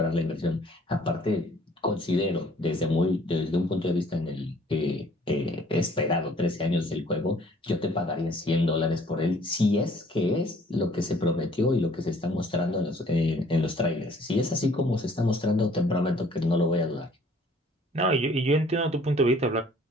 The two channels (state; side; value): normal; both; correlation 0.57